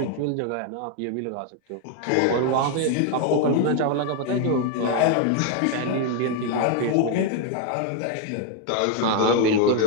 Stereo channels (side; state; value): both; different; correlation 0.01